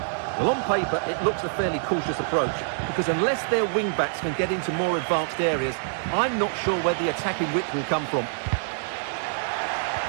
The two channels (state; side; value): silent; left; digital silence